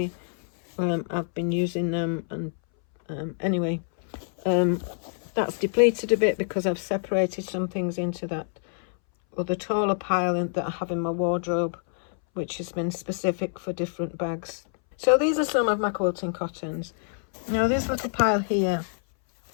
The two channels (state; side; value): silent; right; 61 dB below the other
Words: I've been using them, and anyway, that's depleted a bit because I've separated some things into that other taller pile that I have in my wardrobe, which has been specific for different bags. So these are some of my quilting cottons. Now this little pile here,